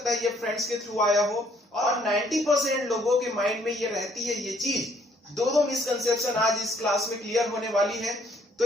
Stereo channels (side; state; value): both; normal; correlation 0.65